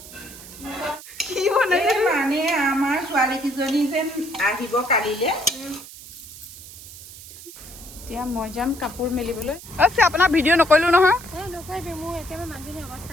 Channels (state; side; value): noise; right; hiss, 16 dB below the sound